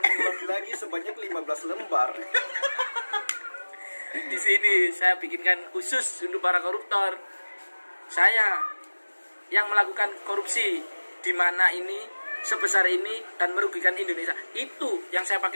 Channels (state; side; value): inverted; both; correlation -1.00